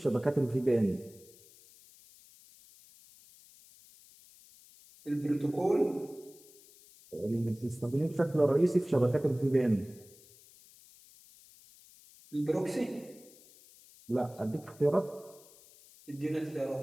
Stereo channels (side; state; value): left; noise; hiss, 24 dB below the sound